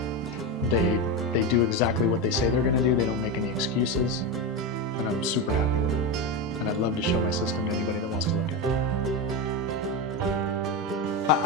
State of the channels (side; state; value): both; normal; correlation 0.15